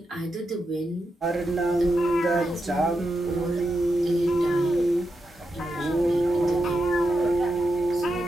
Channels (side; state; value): both; normal; correlation 0.86